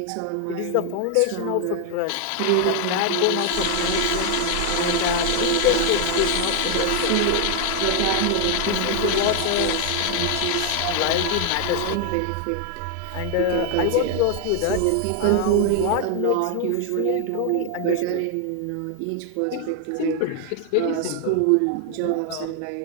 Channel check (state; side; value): different; both; correlation 0.00